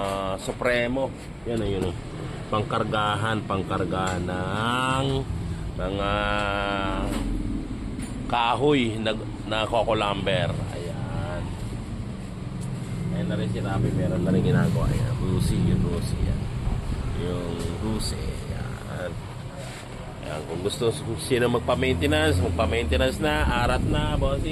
Supremo. Yan o, yun o. Pangkargahan ng mga kahoy na coco lumber. Ayan. Ayan na rin si Rabi. Meron na rin ginagawa. Ayan. Rusi. Yan. Yung Rusi. Ayan. Ayan. Kung gusto sino magpa-maintenance na. Arat na,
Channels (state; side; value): identical; both; correlation 1.00